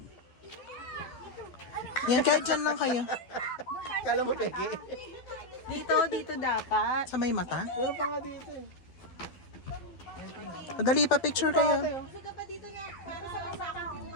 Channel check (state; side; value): late; right; 12 ms